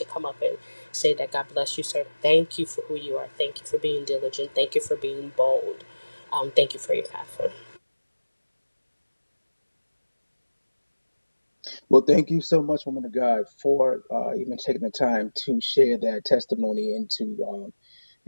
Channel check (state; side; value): inverted; both; correlation -1.00